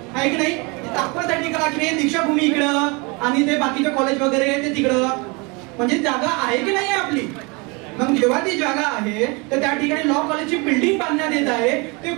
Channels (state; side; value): quieter; left; 28.9 dB